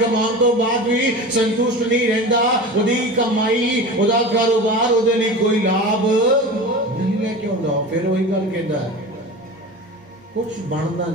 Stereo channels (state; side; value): normal; both; correlation 0.32